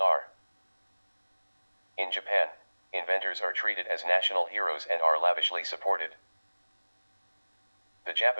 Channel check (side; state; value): both; inverted; correlation -1.00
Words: In Japan, inventors are treated as national heroes and are lavishly supported. The